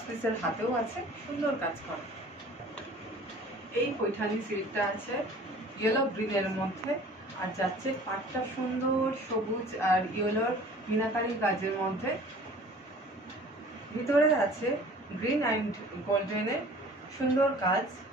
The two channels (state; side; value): normal; both; correlation 0.47